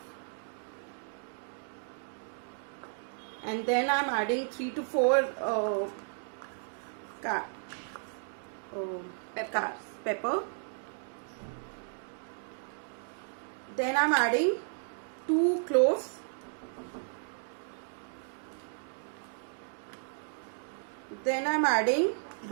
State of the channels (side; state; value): left; silent; digital silence